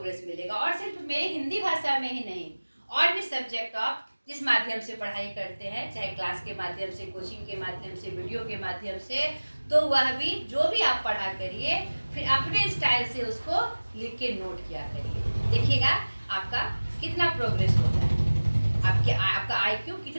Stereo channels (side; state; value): both; inverted; correlation -1.00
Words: मिलेगा। और सिर्फ मेरे हिंदी भाषा में ही नहीं, और भी सब्जेक्ट आप जिस माध्यम से पढ़ाई करते हैं, चाहे क्लास के माध्यम से, कोचिंग के माध्यम से, वीडियो के माध्यम से, तो वह भी जो भी आप पढ़ा करिए फिर अपने स्टाइल से उसको लिख के नोट किया करिए। देखिएगा आपका कितना प्रोग्रेस होता है, आपका IQ